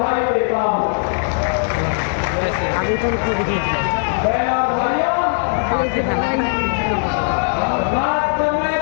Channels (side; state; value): right; silent; digital silence